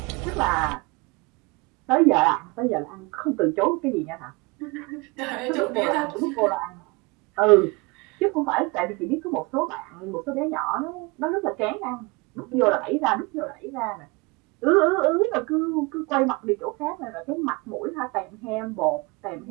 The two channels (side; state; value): left; quieter; 26.7 dB